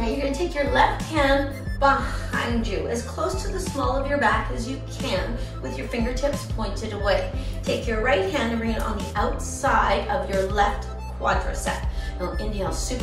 you're going to take your left hand behind you, as close to the small of your back as you can, with your fingertips pointed away. Take your right hand and bring it on the outside of your left quadricep. Now inhale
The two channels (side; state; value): both; identical; correlation 1.00